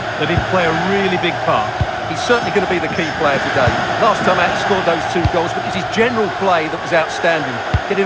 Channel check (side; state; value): both; identical; correlation 1.00